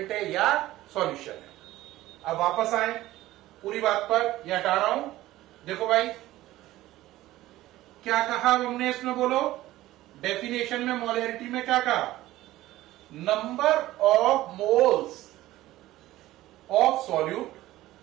है या सॉल्यूशन है। अब वापस आए पूरी बात पर, यह हटा रहा हूं। देखो भाई क्या कहा हमने इसमें, बोलो डेफिनेशन में मोलैरिटी में क्या कहा, number of moles of solute,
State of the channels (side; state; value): left; quieter; 16.0 dB